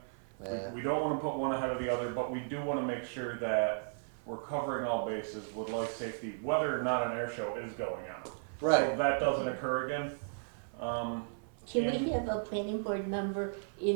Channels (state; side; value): silent; left; 54 dB below the other